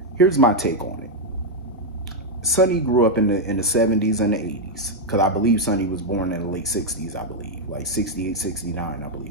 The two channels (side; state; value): both; normal; correlation 0.00